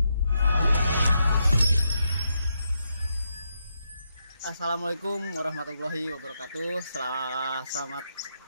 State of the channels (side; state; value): both; inverted; correlation -0.81